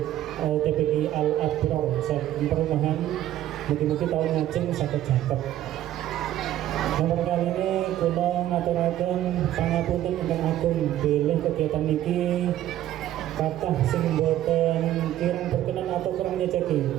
TPQ Al Abrar saking perumahan mugi-mugi tahun ngajeng saged jaket. Nomor kali ini kula ngaturaken pangapunten ingkang agung bilih kegiatan niki kathah sing boten kirang berkenan atau kurang nyeceki.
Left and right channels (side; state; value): left; quieter; 13.0 dB